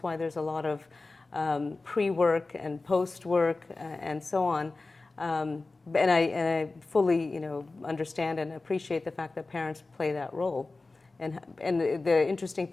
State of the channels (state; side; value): quieter; right; 3.5 dB